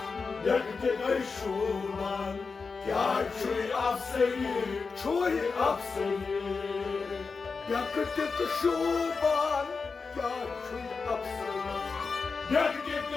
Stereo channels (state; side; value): quieter; right; 4.7 dB